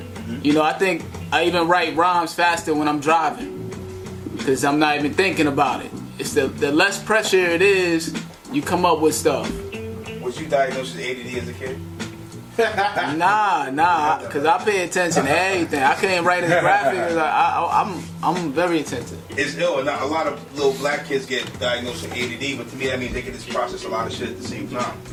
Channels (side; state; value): both; identical; correlation 1.00